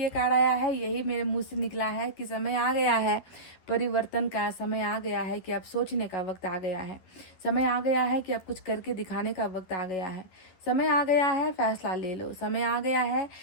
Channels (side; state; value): right; late; 12 ms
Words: ये कार्ड आया है यही मेरे मुंह से निकला है कि समय आ गया है परिवर्तन का, समय आ गया है कि अब सोचने का वक्त आ गया है, समय आ गया है कि अब कुछ करके दिखाने का वक्त आ गया है, समय आ गया है फैसला ले लो, समय आ गया है